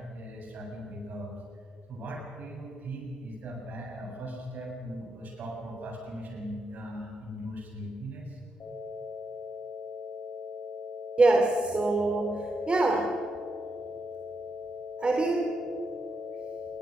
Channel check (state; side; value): normal; both; correlation 0.83